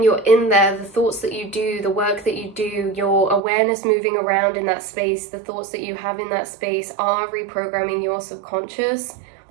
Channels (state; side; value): drops out; left; at 3.4 s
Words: you're in there, the thoughts that you do, the work that you do, your awareness moving around in that space, the thoughts that you have in that space are reprogramming your subconscious.